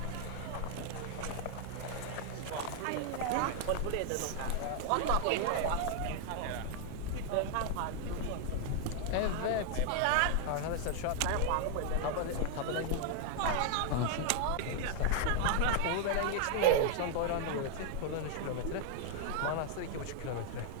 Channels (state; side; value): different; both; correlation 0.00